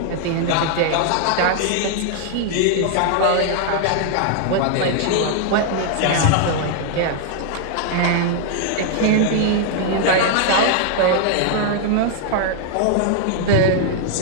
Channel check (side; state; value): both; different; correlation 0.00